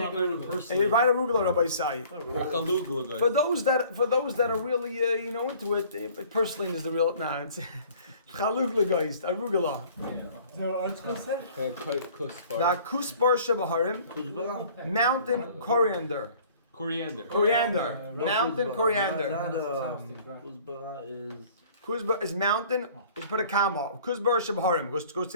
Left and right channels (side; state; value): both; inverted; correlation -0.52